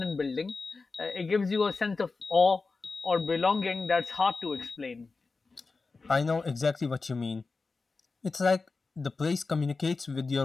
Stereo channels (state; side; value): quieter; right; 4.1 dB